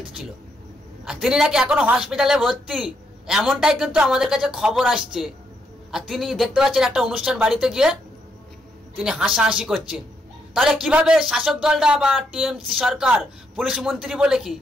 আর তিনি নাকি এখনো হসপিটালে ভর্তি, এমনটাই কিন্তু আমাদের কাছে খবর আসছে। আর তিনি দেখতে পাচ্ছেন একটা অনুষ্ঠান বাড়িতে গিয়ে তিনি হাসাহাসি করছেন। তাহলে কিভাবে শাসক দলটা বা টিএমসি সরকার পুলিশ মন্ত্রী বলে কি,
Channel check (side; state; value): both; normal; correlation 0.77